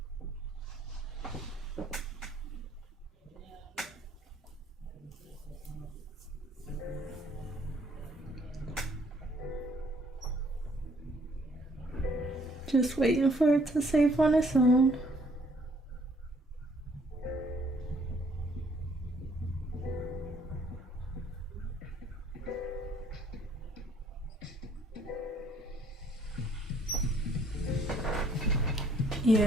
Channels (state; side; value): normal; both; correlation 0.63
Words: Just waiting for it to save on its own.